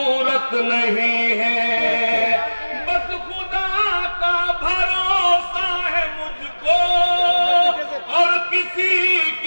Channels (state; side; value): inverted; both; correlation -1.00